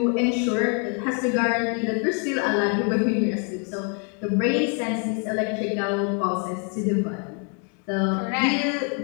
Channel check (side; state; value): right; quieter; 39.1 dB